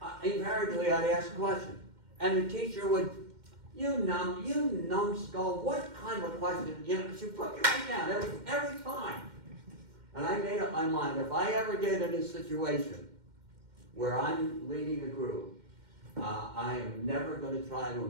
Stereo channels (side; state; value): left; late; 2.1 ms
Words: invariably I'd ask a question. And the teacher would, you numbskull, what kind of a question? She'd put me right down every time. And I made up my mind, if I ever get in a situation where I'm leading a group, I am never going to try to